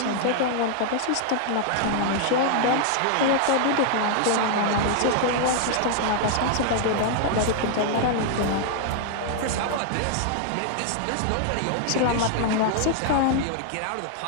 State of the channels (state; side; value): different; both; correlation -0.01